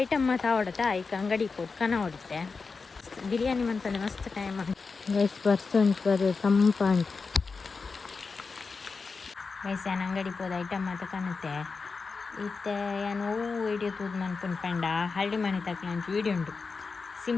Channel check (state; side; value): quieter; right; 4.6 dB